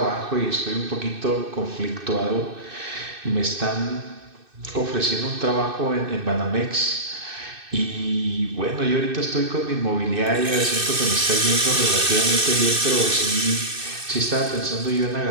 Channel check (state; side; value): late; left; 2.6 ms